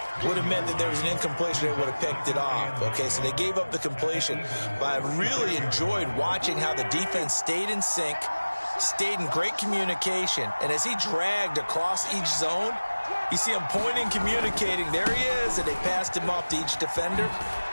would have meant that there was an incompletion. They would have picked it off. Okay, so they gave up the completion. But I really enjoyed watching how the defense stayed in sync, stayed in great communication. And as he dragged across each zone, you see him pointing, communicating. There he is, and they passed him off to each defender.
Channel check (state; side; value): inverted; both; correlation -1.00